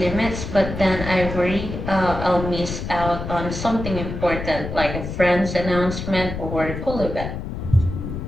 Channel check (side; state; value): left; noise; rumble, 6 dB below the sound